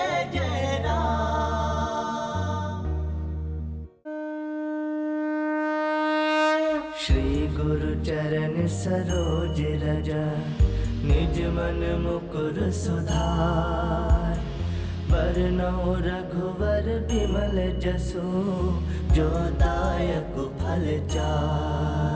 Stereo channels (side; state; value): both; identical; correlation 1.00